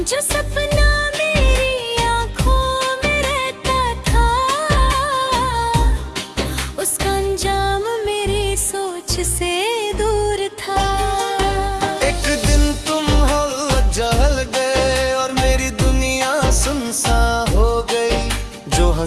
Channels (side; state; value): both; identical; correlation 1.00